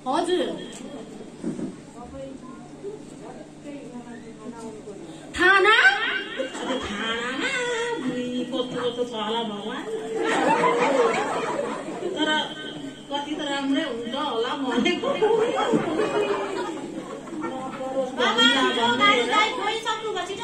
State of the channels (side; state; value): both; identical; correlation 1.00